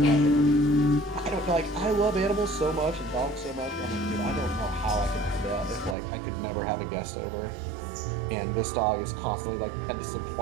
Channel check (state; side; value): drops out; left; at 6.0 s